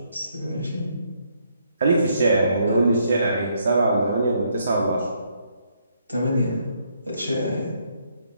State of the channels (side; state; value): both; inverted; correlation -0.73